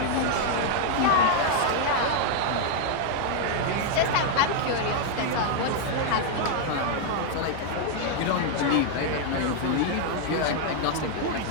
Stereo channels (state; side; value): different; both; correlation 0.00